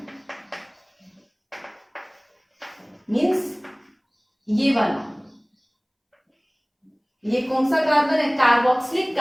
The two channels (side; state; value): both; identical; correlation 1.00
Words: मींस ये वाला, ये कौन सा कार्बन है कार्बोक्सिलिक